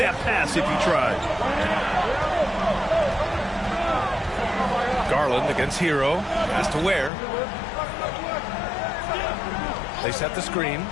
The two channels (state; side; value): drops out; right; at 7.1 s